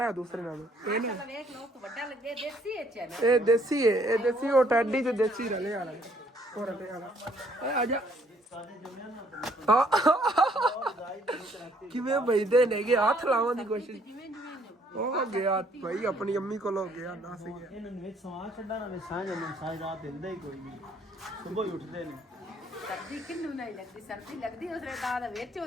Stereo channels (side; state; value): both; normal; correlation 0.64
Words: ਹੈ ਦੂਸਰੇ ਨਾਲੋਂ ਇਹ ਨਾ ਵੇਖ ਲੋ ਵੱਡਾ ਲੱਗੇ ਦੇਸੀ ਐਚ ਹੈ ਇਹ ਦੇਸੀ ਹੈ ਇਹ ਦੇਸੀ ਉਹ ਟੈਡੀ ਤੇ ਦੇਸੀ ਰਲੇ ਵਾਲਾ ਉਹ ਰਲੇ ਵਾਲਾ ਆ ਜਾ ਕਿਵੇਂ ਬਈਦੇ ਨੇਗੇ ਹੱਥ ਲਾਉਣ ਦੀ ਕੋਸ਼ਿਸ਼ ਉਹ ਗਿਆ ਭਾਈ ਆਪਣੀ ਅੰਮੀ ਕੋਲ ਹੋ ਗਿਆ ਦੱਸ ਗਿਆ ਇਹਨਾਂ ਨੂੰ ਵਿੱਚ ਸਵਾਂ ਛੱਡਣਾ ਨਾ ਸਾਂਝ ਨੂੰ ਸਾਂਝ ਰਾਤ ਦਿੰਦਾ ਹੀ ਕੋਈ ਨਹੀਂ ਸਵੇਰ ਹੀ ਉੱਠਦੇ ਨੇ ਸਰਦੀ ਕਿੰਨੂੰ ਨਹੀਂ ਲੱਗਦੀ ਸਰਦੀ ਲੱਗਦੀ ਉਸਰੇ ਦਾ ਵਿੱਚ ਉਹ